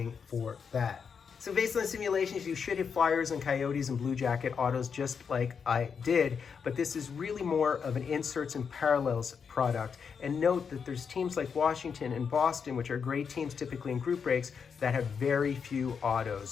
for that. So based on simulations, you should hit Flyers and Coyotes and Blue Jacket autos just like I did, but this is really more of an inserts and parallels product. And note that there's teams like Washington and Boston, which are great teams typically in group breaks, that have very few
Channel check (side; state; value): right; quieter; 6.3 dB